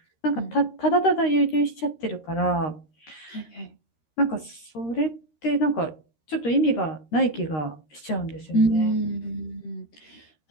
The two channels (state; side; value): late; right; 13 ms